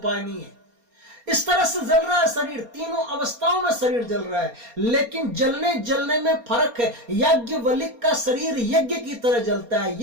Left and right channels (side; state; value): left; late; 4.3 ms